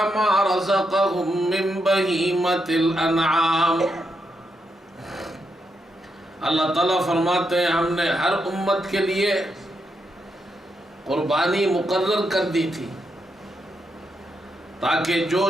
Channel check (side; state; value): both; normal; correlation 0.82